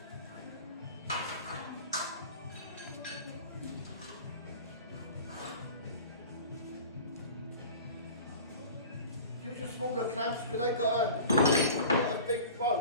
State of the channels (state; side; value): inverted; both; correlation -0.40